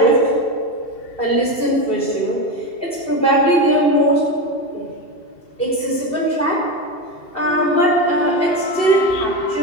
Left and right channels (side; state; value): right; late; 2.7 ms